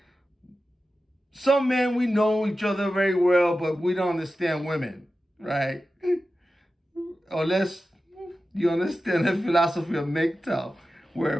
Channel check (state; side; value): normal; both; correlation 0.93